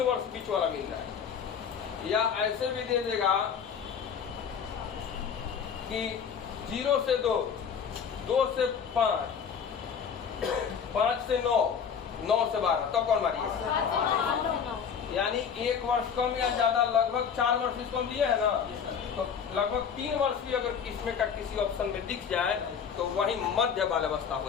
वर्ष बीच वाला मिल रहा है। या ऐसे भी दे देगा कि 0 से 2, 2 से 5, 5 से 9, 9 से 12, तब कौन मारिए? यानी 1 वर्ष कम या ज्यादा लगभग 4 वर्ष इसको हम दिए है ना, तो लगभग 3 वर्ष भी अगर इसमें का किसी ऑप्शन में दिख जाए तो वही मध्य बाल्यावस्था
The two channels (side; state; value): right; quieter; 7.1 dB